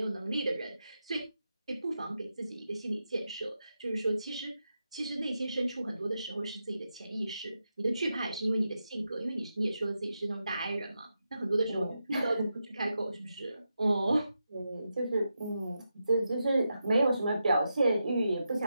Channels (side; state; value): both; inverted; correlation -0.87